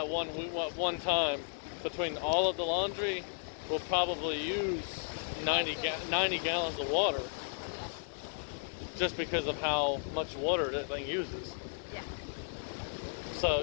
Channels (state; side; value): silent; right; 55 dB below the other